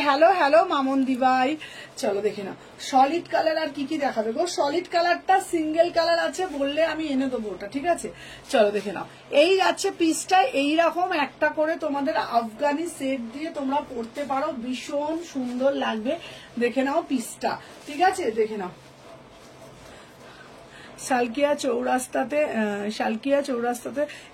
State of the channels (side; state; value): both; identical; correlation 1.00